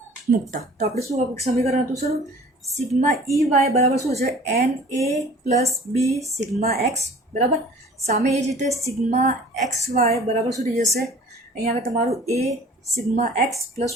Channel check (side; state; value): both; normal; correlation 0.48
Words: મૂકતા. તો આપણે શું સમીકરણ હતું શરૂ સિગ્મા ઈ વાય બરાબર શું છે એન એ પ્લસ બી સિગ્મા એક્સ બરાબર. સામે એ જ રીતે સિગ્મા એક્સ વાય બરાબર શું થઈ જશે અહીંયા આગળ તમારું એ સિગ્મા એક્સ પ્લસ